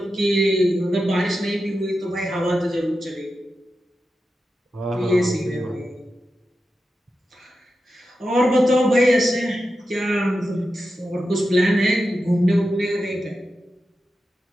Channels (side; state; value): both; normal; correlation 0.90